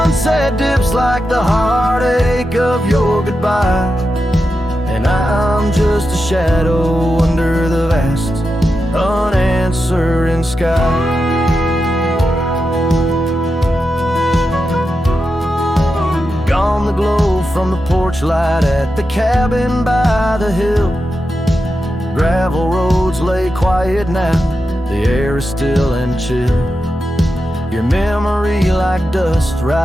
dips like the heartache of your goodbye, and I'm just a shadow under the vast, unanswering sky. Gone the glow from the porch light at the cabin by the hill. Gravel roads lay quiet now, the air is still and chill. Your memory like dust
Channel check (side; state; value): both; normal; correlation 0.89